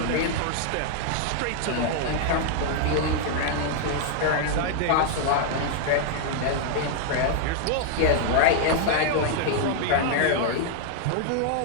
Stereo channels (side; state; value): both; different; correlation 0.00